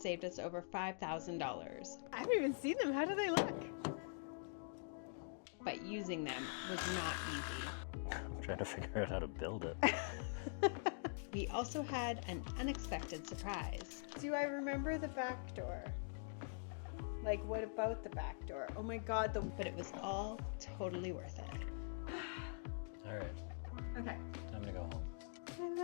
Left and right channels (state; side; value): silent; right; digital silence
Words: us over $5,000, I haven't even seen them. How do they look? but using them was not easy. I'm trying to figure out how to build it. We also had an unexpected surprise. Do I remember the back door? Like, what about the back door? Oh my God, But it was all totally worth it. All right, Okay. time to go home. I